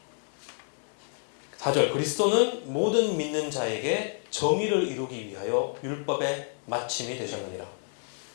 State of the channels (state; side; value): silent; right; 58 dB below the other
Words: 4절. 그리스도는 모든 믿는 자에게 정의를 이루기 위하여 율법의 마침이 되셨느니라.